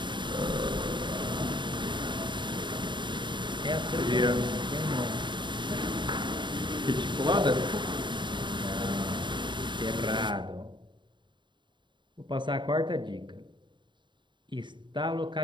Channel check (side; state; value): left; late; 0.23 ms